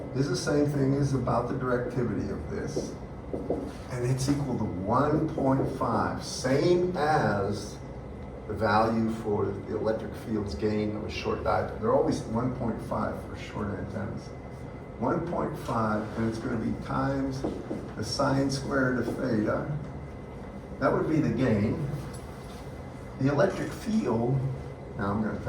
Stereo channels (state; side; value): identical; both; correlation 1.00